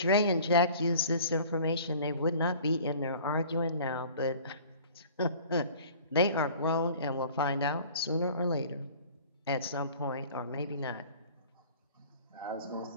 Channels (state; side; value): inverted; both; correlation -0.47